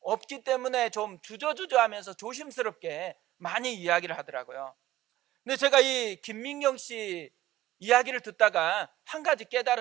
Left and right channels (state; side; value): quieter; left; 15.0 dB